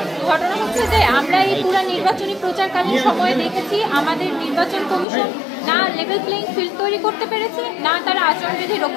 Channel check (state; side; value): drops out; right; at 5.1 s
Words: ঘটনা হচ্ছে যে আমরা এই পুরো নির্বাচনী প্রচারকালীন সময়ে দেখেছি আমাদের নির্বাচন কমিশন না লেভেল প্লেইং ফিল্ড তৈরি করতে পেরেছে, না তারা আচরণবিধি